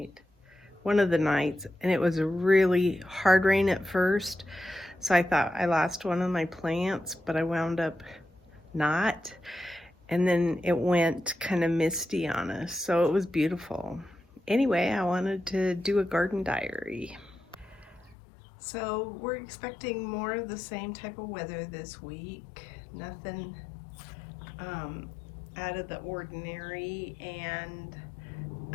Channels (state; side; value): drops out; right; at 18.2 s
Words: one of the nights, and it was a really hard rain at first. So I thought I lost one of my plants, but I wound up not. And then it went kind of misty on us, so it was beautiful. Anyway, I wanted to do a garden diary. So we're expecting more of the same type of weather this week. Nothing out of the ordinary, and